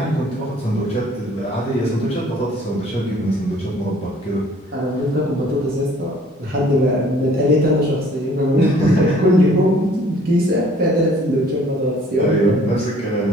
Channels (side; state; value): both; normal; correlation 0.56